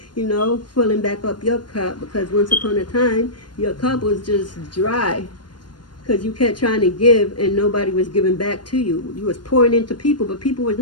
you know, filling back up your cup, because once upon a time, your cup was just dry, because you kept trying to give and nobody was giving back to you. You was pouring into people, but people was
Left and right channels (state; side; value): late; right; 0.71 ms